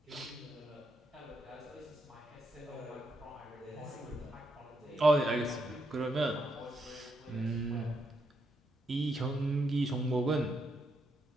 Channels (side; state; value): both; normal; correlation 0.79